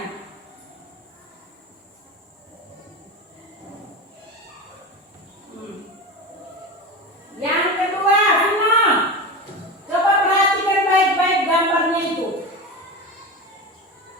Yang kedua, Vino, coba perhatikan baik-baik gambarnya itu.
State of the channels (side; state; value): both; normal; correlation 0.25